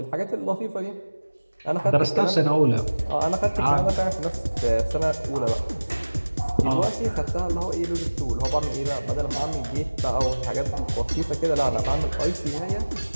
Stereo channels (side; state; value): both; inverted; correlation -1.00